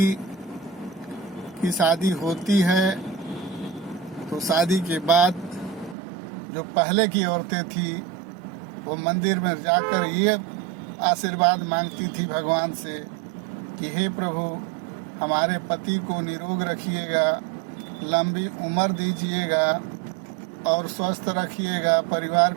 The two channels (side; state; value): left; drops out; at 6.0 s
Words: की शादी होती है तो शादी के बाद जो पहले की औरतें थी वो मंदिर में जाकर ये आशीर्वाद मांगती थी भगवान से कि हे प्रभु, हमारे पति को निरोग रखिएगा, लंबी उम्र दीजिएगा और स्वस्थ रखिएगा, परिवार